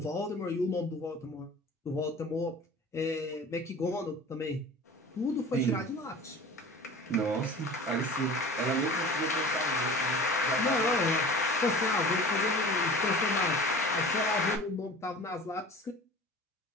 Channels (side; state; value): both; normal; correlation 0.40